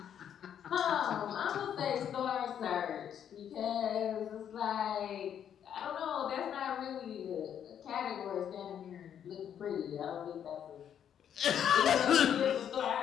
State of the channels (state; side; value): quieter; right; 9.1 dB